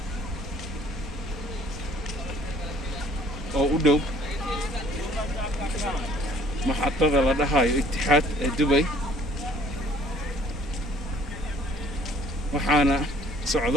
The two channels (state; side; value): normal; both; correlation 0.57